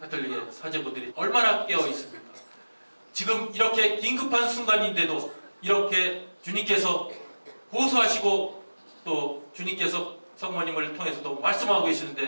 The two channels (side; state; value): both; inverted; correlation -1.00